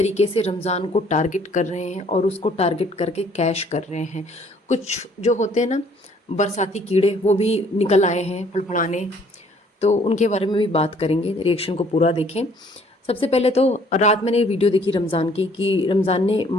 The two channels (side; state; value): both; normal; correlation 0.60